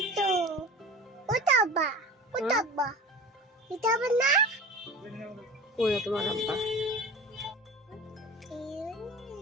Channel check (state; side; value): normal; both; correlation 0.36